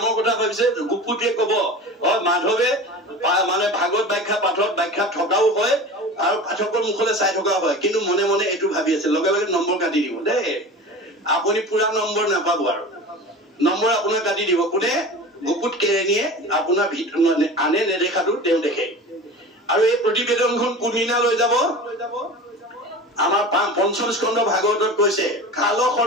কথা ভাবিছে গুপুতিয়ে কব মাধৱে মানে ভাগৱত ব্যাখ্যা পাঠত ব্যাখ্যা থকাও হয় আৰু পাঠকৰ মুখলে চাই থকা হয় কিন্তু মনে মনে এটো ভাবি আছে লগে লগে নম্বৰ কাটি দিব দে আপুনি পুৰা নম্বৰ নাপাব আৰু নম্বৰ আপোনাৰ কাটি দিব কোনে গুপুত কেৰেনিয়ে আপোনাৰ ভিতৰ মানে আনে নেদেখাটো তেওঁ দেখে আৰু এই প্ৰতিবেদনখন কোনদিনা লৈ যাব আমাৰ পঞ্চম স্কন্ধ ভাগৱতত কৈছে কাল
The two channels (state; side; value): normal; both; correlation 0.34